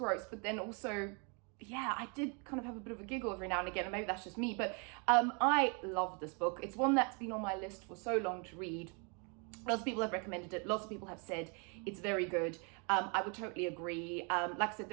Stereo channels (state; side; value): quieter; left; 35.0 dB